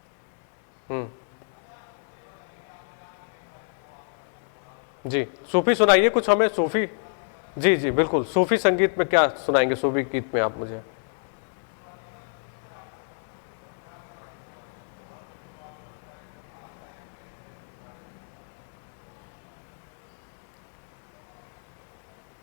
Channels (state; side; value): silent; right; 60 dB below the other